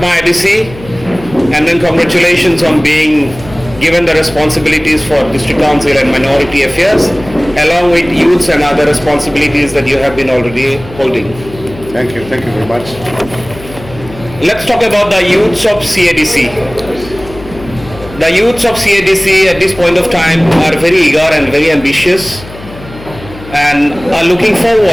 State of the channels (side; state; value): left; noise; hum, 16 dB below the sound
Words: ADC, and then congratulations on being given the responsibilities for District Council and Minority Affairs, along with youths and other responsibilities that you have been already holding. Thank you very much. Let's talk about the youths of CADC. The youths of CADC at this point of time are very eager and very ambitious and are looking